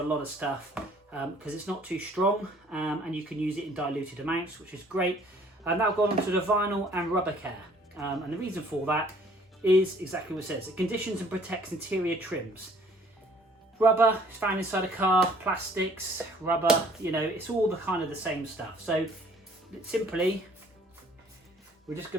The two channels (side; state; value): both; normal; correlation 0.57